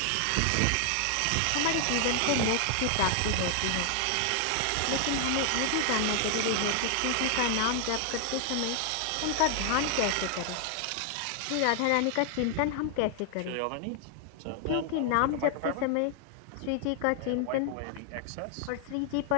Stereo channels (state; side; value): different; both; correlation 0.00